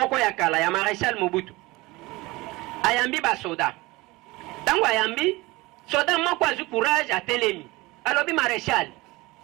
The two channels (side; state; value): left; quieter; 21.7 dB